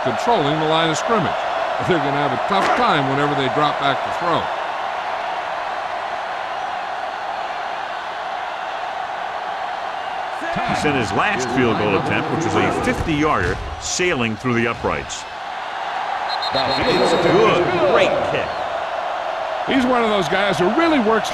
controlling the line of scrimmage. But they're going to have a tough time whenever they drop back to throw. He sent his last field goal attempt, which was a 50-yarder, sailing through the uprights. It's good. Great kick. He's one of those guys who really works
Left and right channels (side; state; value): both; identical; correlation 1.00